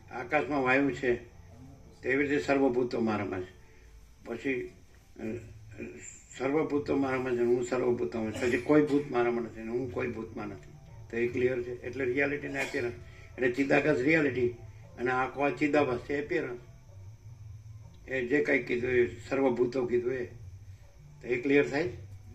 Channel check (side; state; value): both; identical; correlation 1.00